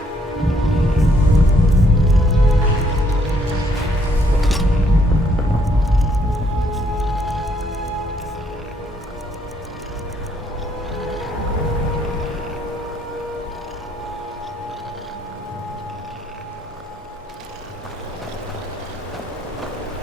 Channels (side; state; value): both; normal; correlation 0.69